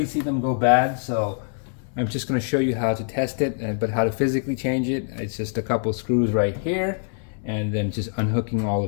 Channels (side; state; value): right; silent; 62 dB below the other